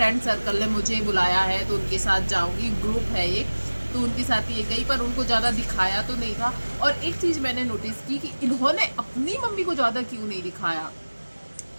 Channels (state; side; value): inverted; both; correlation -1.00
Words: सर्कल ने मुझे बुलाया है तो उनके साथ जाऊंगी, ग्रुप है ये, तो उनके साथ ये गई, पर उनको ज़्यादा दिखाया तो नहीं था। और एक चीज़ मैंने नोटिस की कि इन्होंने अपनी मम्मी को ज़्यादा क्यों नहीं दिखाया,